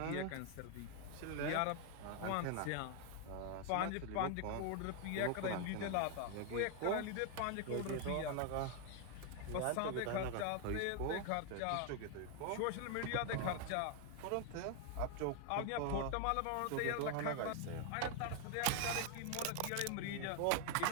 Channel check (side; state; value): both; different; correlation 0.00